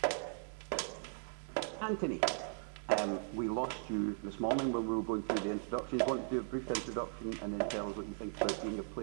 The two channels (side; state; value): left; silent; 53 dB below the other